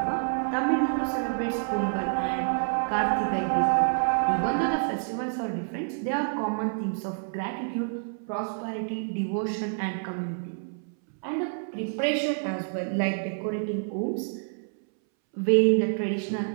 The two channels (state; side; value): silent; left; 60 dB below the other